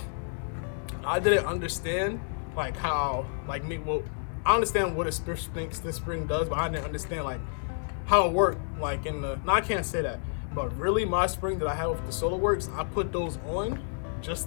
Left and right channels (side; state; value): right; silent; digital silence